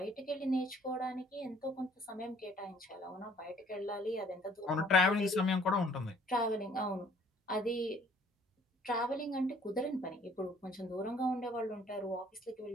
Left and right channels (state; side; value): normal; both; correlation 0.59